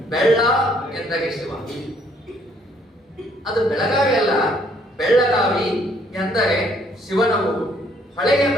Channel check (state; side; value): normal; both; correlation 0.65